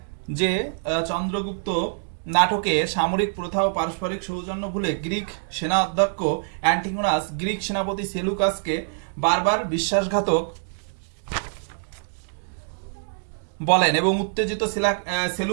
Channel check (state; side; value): silent; left; digital silence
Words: যে চন্দ্রগুপ্ত নাটকে সামরিক প্রথা ও পারস্পরিক সৌজন্য ভুলে গ্রিক সেনা অধ্যক্ষ অ্যান্টিগোনাস গ্রিক সেনাপতি সেলুকাসকে বারবার বিশ্বাসঘাতক বলেন এবং উত্তেজিত